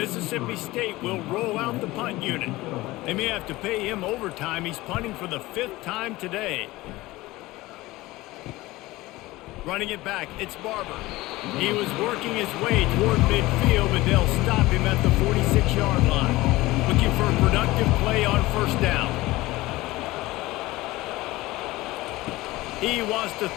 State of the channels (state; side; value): quieter; right; 19.1 dB